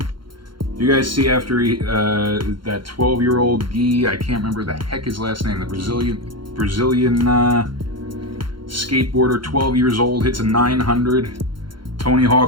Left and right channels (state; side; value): late; left; 0.73 ms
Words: Do you guys see after that 12-year-old Guy, I can't remember the heck his last name, the Brazilian skateboarder, 12 years old, hits a 900. Tony